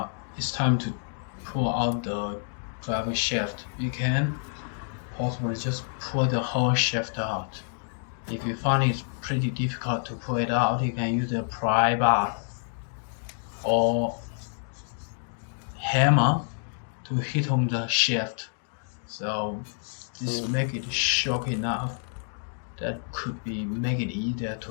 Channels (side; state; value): right; silent; digital silence